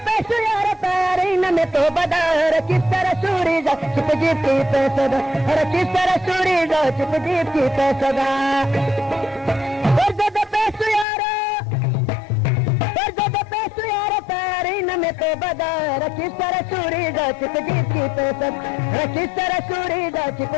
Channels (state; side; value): drops out; right; at 11.1 s